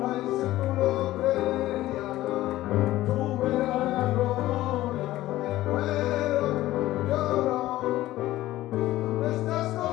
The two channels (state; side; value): quieter; right; 15.8 dB